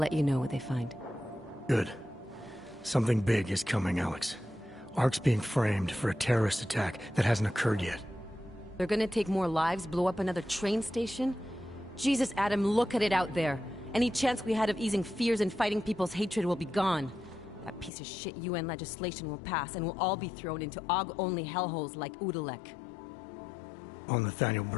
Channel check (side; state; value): right; drops out; at 17.9 s